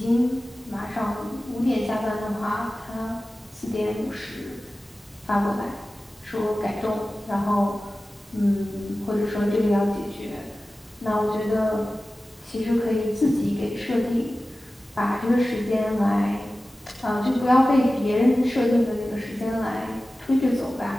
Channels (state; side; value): normal; both; correlation 0.96